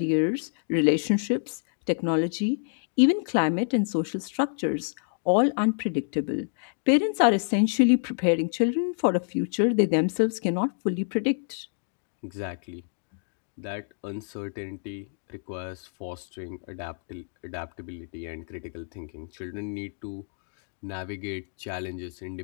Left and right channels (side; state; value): right; silent; digital silence